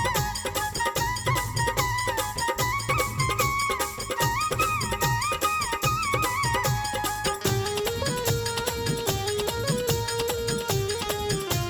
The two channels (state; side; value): identical; both; correlation 1.00